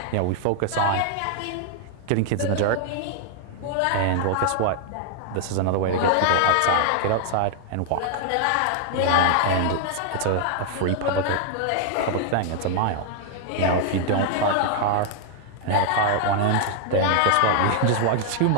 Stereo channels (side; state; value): both; different; correlation 0.00